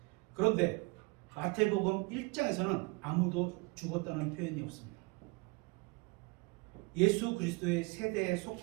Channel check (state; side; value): quieter; left; 27.4 dB